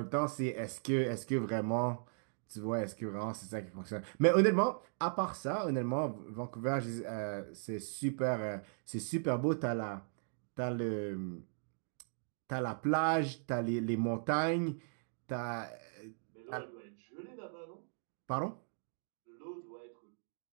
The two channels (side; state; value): left; silent; digital silence